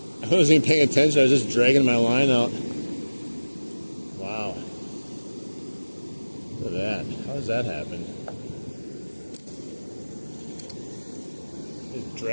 I wasn't even paying attention, I was just dragging my line out. Wow. Look at that. How does that happen? Just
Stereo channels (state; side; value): inverted; both; correlation -1.00